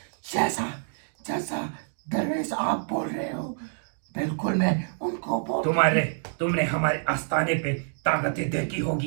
जैसा जैसा दरवेश आप बोल रहे हो बिल्कुल मैं उनको बोल। तुमने हमारे आस्थाने पे ताकतें देखी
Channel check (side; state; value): left; silent; digital silence